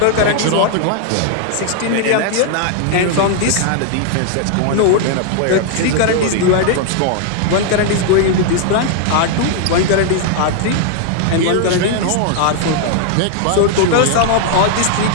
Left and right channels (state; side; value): different; both; correlation 0.00